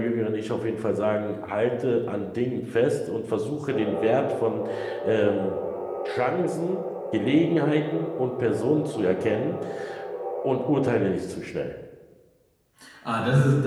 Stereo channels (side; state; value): both; identical; correlation 1.00